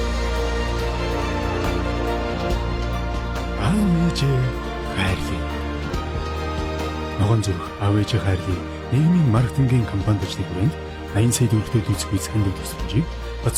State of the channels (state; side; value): identical; both; correlation 1.00